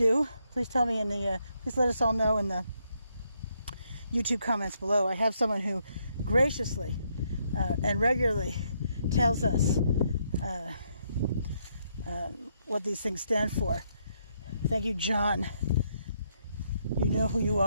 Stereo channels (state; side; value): inverted; both; correlation -0.75